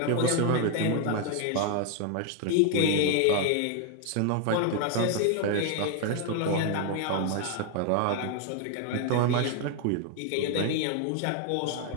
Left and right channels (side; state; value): both; different; correlation 0.00